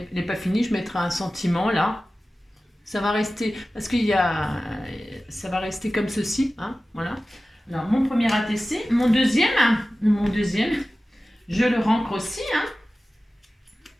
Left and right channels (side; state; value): both; normal; correlation 0.96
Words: n'est pas fini, je mettrai un sentiment là. Ça va rester, parce qu'il y a, ça va rester comme ceci, hein, voilà. Alors, mon premier ATC, mon deuxième, je le rancre aussi, hein.